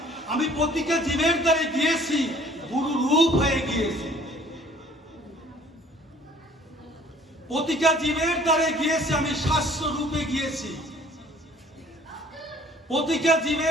আমি প্রতিটা জীবের দ্বারে গিয়েছি, গুরু রূপ হয়ে গিয়েছি। প্রতিটা জীবের দ্বারে গিয়েছি, আমি শাস্ত্র রূপে গিয়েছি। প্রতিটা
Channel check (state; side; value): normal; both; correlation 0.54